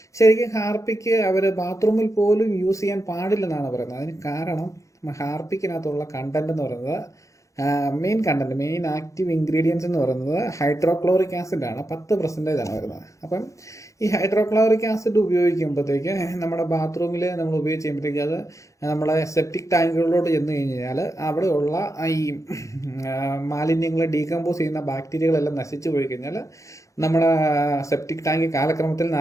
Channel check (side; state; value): right; late; 0.15 ms